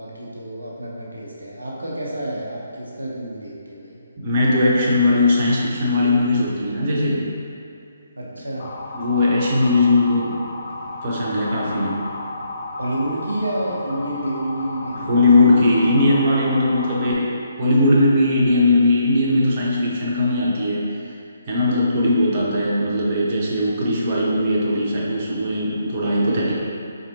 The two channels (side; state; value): both; inverted; correlation -0.74